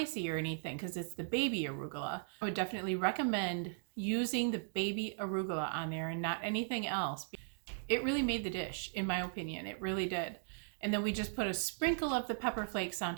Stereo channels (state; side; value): silent; left; digital silence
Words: or anything because it's the baby arugula. I would definitely recommend using the baby arugula on there and not anything else. It really made the dish, in my opinion. It really did. And then we just put a sprinkle of the pepper flakes on